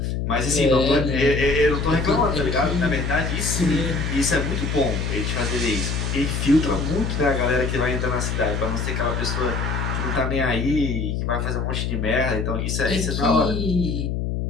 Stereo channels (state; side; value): noise; left; hum, 1 dB below the sound